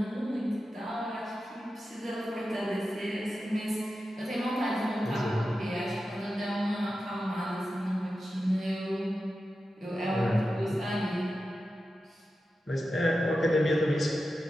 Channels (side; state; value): both; normal; correlation 0.92